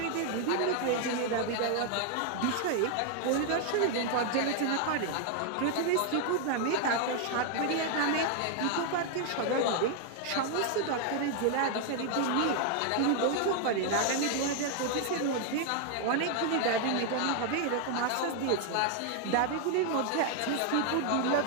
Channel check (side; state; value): both; different; correlation 0.00